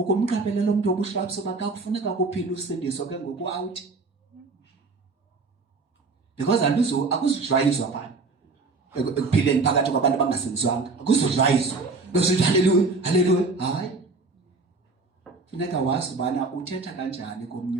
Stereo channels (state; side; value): quieter; left; 3.8 dB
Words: umuntu wobuhlwaps uba kakufuneka kuphila usindiso ke ngoku out because akuzujwayizwa phana ekuphileni phakathi kwabantu abangasindiswanga akuzujwayizwa besithi haleluya haleluya hayi funeka wazi ubana uthetha kanjani komnye